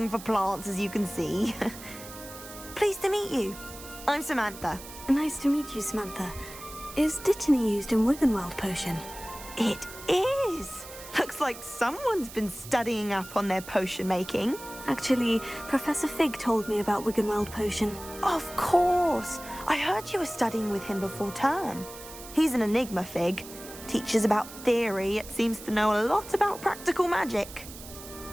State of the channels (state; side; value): noise; right; hiss, 15 dB below the sound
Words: for plants, as you can see. Pleased to meet you. I'm Samantha. Nice to meet you, Samantha. Is Dittany used in Wiggenweld potion? It is! Looks like someone's been studying up on their potion making. Actually, Professor Fig told me about Wiggenweld potion. Of course! I heard you were studying with him before term. He's an enigma, Fig. Teaches about theory, yet seems to know a lot about practical magic.